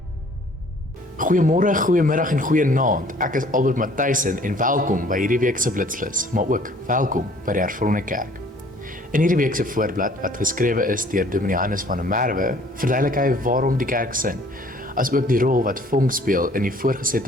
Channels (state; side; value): normal; both; correlation 0.55